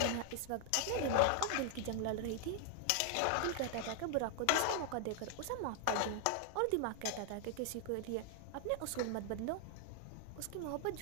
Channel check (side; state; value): both; different; correlation 0.00